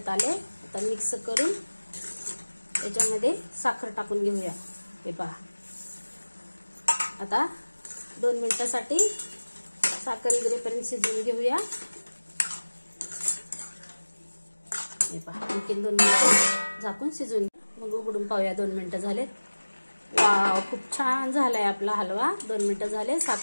आले. आता मिक्स करून याच्यामध्ये साखर टाकून घेऊया. हे पहा आता 2 मिनिटासाठी साखर इगरेपर्यंत शिजवून घेऊया. हे पहा आणखीन 2 मिनिटं झाकून शिजवून मग उघडून पाहूया. 2 मिनिटं झालेत. वाव खूप छान झालाय आपला हलवा. 2 मिनिटं झाले.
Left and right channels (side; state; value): both; inverted; correlation -1.00